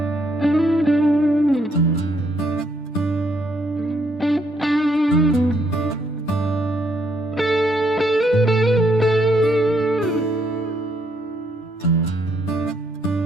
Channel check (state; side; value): normal; both; correlation 0.72